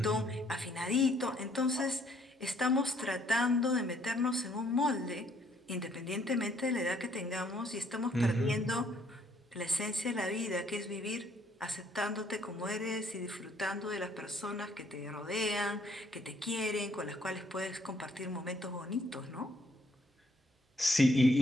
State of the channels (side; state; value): both; normal; correlation 0.66